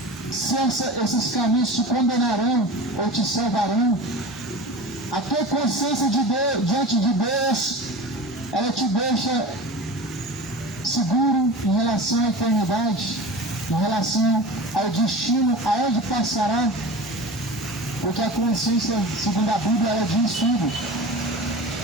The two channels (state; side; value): normal; both; correlation 0.33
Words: se esses caminhos te condenarão ou te salvarão? A tua consciência de Deus, diante de Deus, ela te deixa seguro em relação à eternidade, em relação ao destino, aonde passará, porque a consciência, segundo a Bíblia, ela diz tudo.